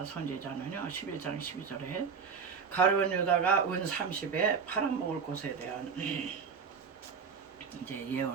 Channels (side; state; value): left; quieter; 6.0 dB